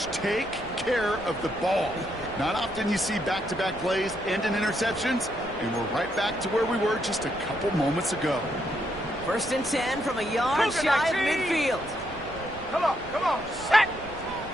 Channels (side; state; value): right; noise; rumble, 18 dB below the sound